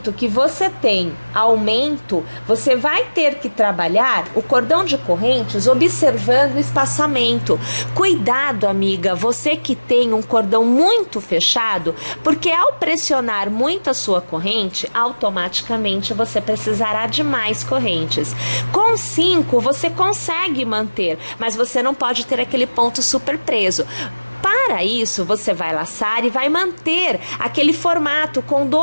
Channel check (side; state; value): both; inverted; correlation -1.00